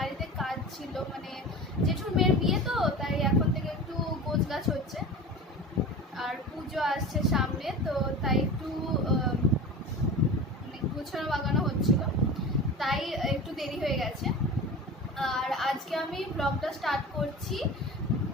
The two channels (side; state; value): both; normal; correlation 0.33